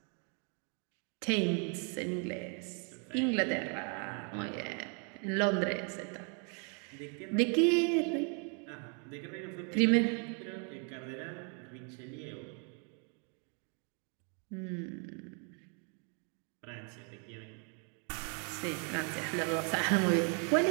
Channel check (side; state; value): left; quieter; 38.3 dB